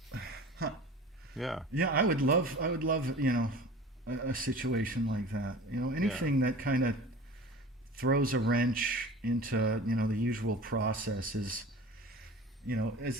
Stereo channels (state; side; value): normal; both; correlation 0.39